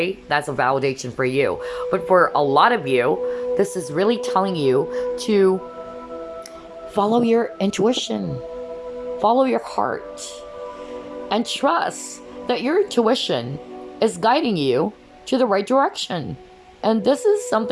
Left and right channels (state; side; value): identical; both; correlation 1.00